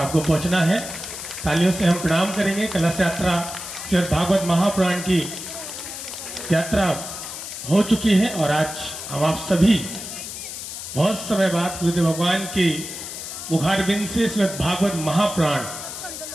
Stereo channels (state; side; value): noise; left; hiss, 9 dB below the sound